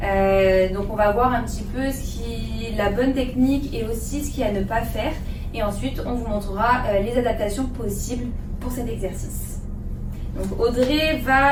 Donc on va voir un petit peu la bonne technique et aussi ce qu'il y a à ne pas faire. Et ensuite on vous montrera les adaptations possibles pour cet exercice. Donc Audrey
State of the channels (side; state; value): both; identical; correlation 1.00